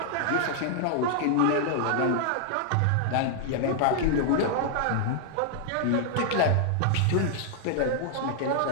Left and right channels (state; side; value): different; both; correlation -0.01